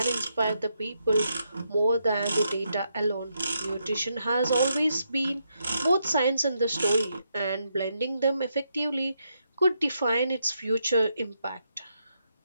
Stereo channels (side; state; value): both; inverted; correlation -0.80